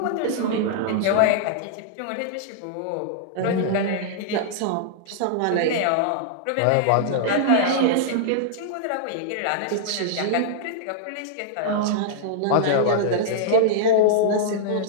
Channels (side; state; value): both; different; correlation -0.01